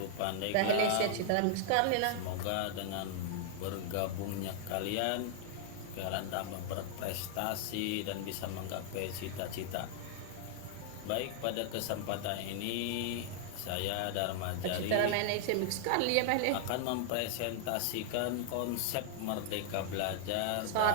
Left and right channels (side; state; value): both; different; correlation 0.00